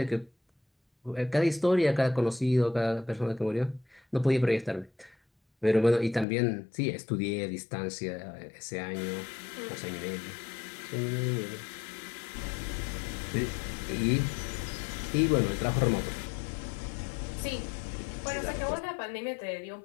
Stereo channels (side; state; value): right; drops out; at 6.2 s